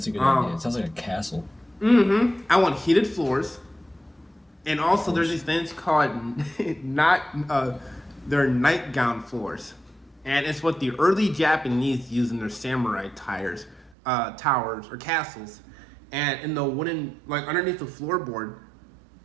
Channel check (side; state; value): left; drops out; at 14.0 s